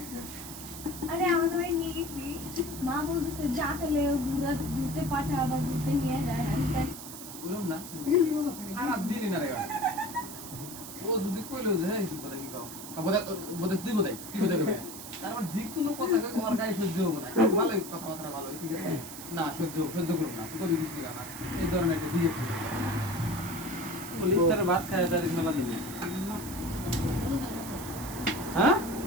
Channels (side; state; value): right; noise; hiss, 11 dB below the sound